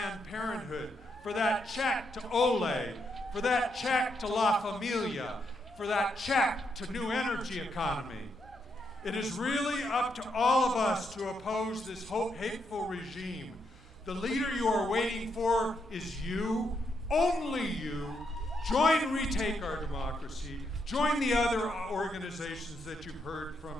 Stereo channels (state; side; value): normal; both; correlation 0.79